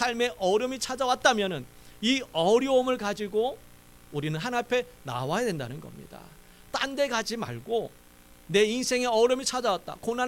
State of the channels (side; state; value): both; identical; correlation 1.00